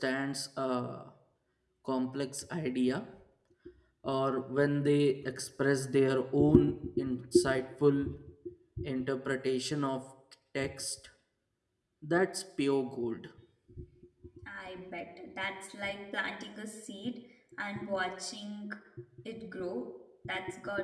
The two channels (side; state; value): both; identical; correlation 1.00